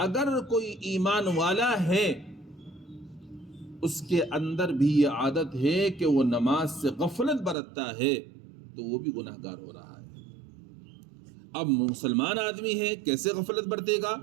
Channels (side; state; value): left; drops out; at 7.6 s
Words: کوئی ایمان والا ہے اس کے اندر بھی یہ عادت ہے کہ وہ نماز سے غفلت برتتا ہے تو وہ بھی گناہ گار ہو رہا ہے. اب مسلمان آدمی ہے، کیسے غفلت برتے گا؟